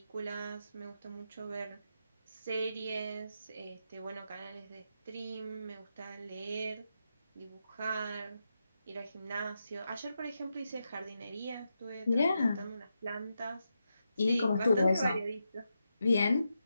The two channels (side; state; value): both; inverted; correlation -0.86